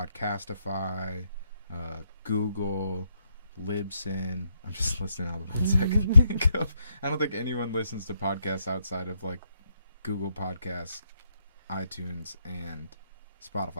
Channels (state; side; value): inverted; both; correlation -0.77